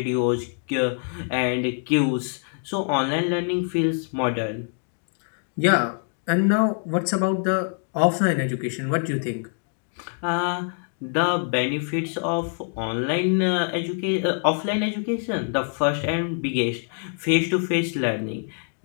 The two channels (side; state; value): right; silent; 57 dB below the other